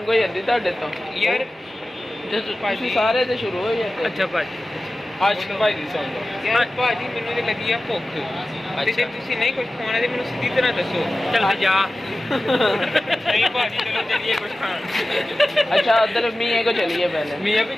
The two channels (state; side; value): normal; both; correlation 0.95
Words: ਹੋ ਜਾਂਦੀ ਤੁਹਾਡੇ ਤੋਂ ਯਾਰ ਤੁਸੀਂ ਸਾਰੇ ਤੇ ਸ਼ੁਰੂ ਹੋ ਜਾਂਦੇ ਅੱਛਾ ਭਾਜੀ ਆਸ਼ਿਕ ਭਾਈ ਦੀ ਸੁਣ ਲਓ ਯਾਰ ਭਾਜੀ ਮੈਨੂੰ ਤੇ ਲੱਗੀ ਆ ਭੁੱਖ ਤੇ ਜੇ ਤੁਸੀਂ ਨਹੀਂ ਕੁਝ ਖਾਣਾ ਤੇ ਮੈਨੂੰ ਸਿੱਧੀ ਤਰ੍ਹਾਂ ਦੱਸੋ ਚੱਲ ਜਾ नहीं भाजी चलो चलिए कुछ खान अच्छा उधर मियाँ को चलिए पहले मियाँ भी